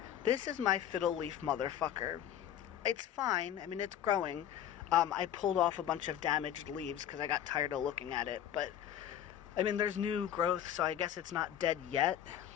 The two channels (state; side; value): quieter; right; 10.5 dB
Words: This is my fiddle leaf motherfucker. It's fine. It's growing. I pulled off a bunch of damaged leaves because I got tired of looking at it. But, there's new growth, so I guess it's not dead yet.